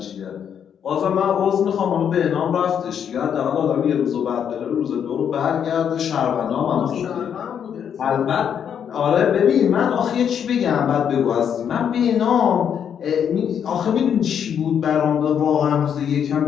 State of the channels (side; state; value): right; quieter; 8.3 dB